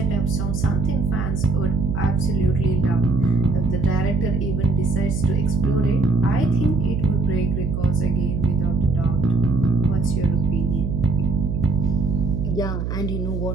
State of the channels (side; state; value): right; noise; hum, 3 dB below the sound